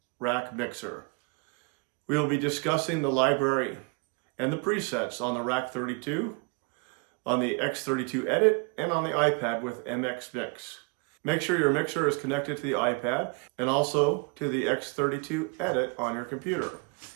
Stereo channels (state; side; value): quieter; left; 32.8 dB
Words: rack mixer. We will be discussing the library and the presets on the Rack 32, on the X32 Edit, and on the iPad with MX Mix. Make sure your mixer is connected to the iPad and also to the X32 Edit on your computer.